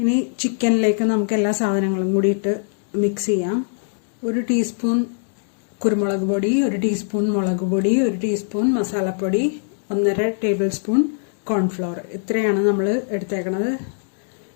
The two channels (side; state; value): right; silent; digital silence